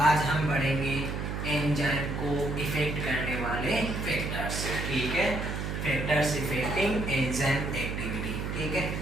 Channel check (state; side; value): noise; right; hum, 3 dB below the sound